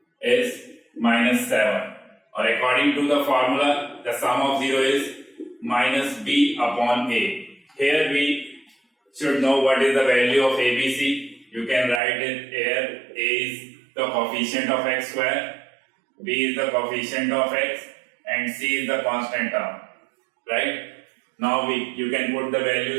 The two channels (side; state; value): left; drops out; at 12.0 s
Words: is minus 7. Or according to the formula, the sum of 0 is minus b upon a. Here we should know what is the value of ABC. You can write it here. A is the coefficient of x square, b is the coefficient of x, and c is the constant term. Right? Now you can put the